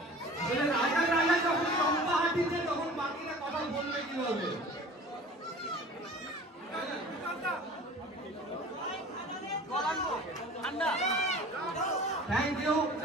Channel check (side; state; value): both; normal; correlation 0.43